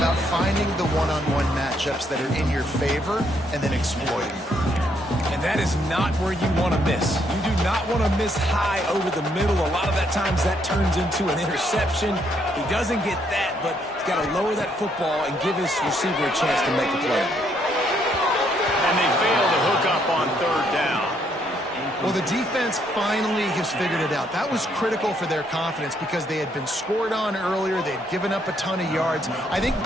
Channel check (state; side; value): normal; both; correlation 0.72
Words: finding the one-on-one matchups that are in your favor and then exploiting. And that is not where you want to miss. You do not want to miss high over the middle. A lot of that times that turns into an interception. He doesn't get that, but he's got to lower that football and give his receiver a chance to make a play. And they fail to hook up on third down. Well, the defense finally has figured it out. That was critical for their confidence because they had been scored on earlier. They'd given up a ton of yards. I think